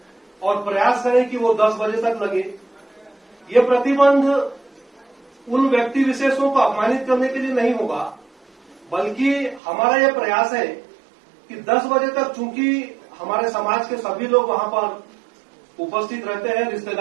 और प्रयास करें कि वो 10 बजे तक लगे। ये प्रतिबंध उन व्यक्ति विशेषों को अपमानित करने के लिए नहीं होगा, बल्कि हमारा यह प्रयास है कि 10 बजे तक, चूंकि हमारे समाज के सभी लोग वहां पर उपस्थित रहते हैं,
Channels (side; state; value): left; drops out; at 9.6 s